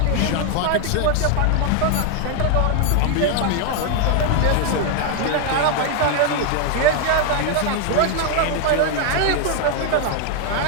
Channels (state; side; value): different; both; correlation 0.00